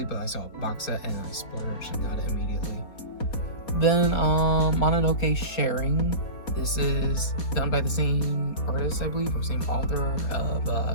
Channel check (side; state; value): right; late; 4.2 ms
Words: but I saw a box set and I splurged and got it immediately. Then Mononoke Sharing. This is done by the same artist, I believe, or same author of